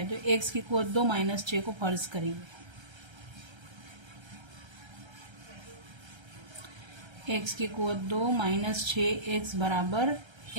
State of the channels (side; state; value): left; late; 1.3 ms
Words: तो x की कुवत 2 -6 को फर्ज करेंगे। x की कुवत 2 -6x बराबर